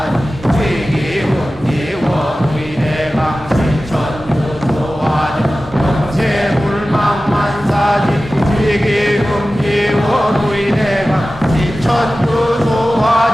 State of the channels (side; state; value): both; normal; correlation 0.95